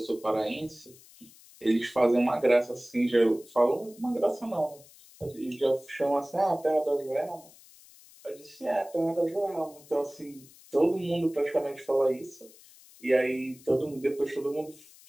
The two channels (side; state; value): left; noise; hiss, 23 dB below the sound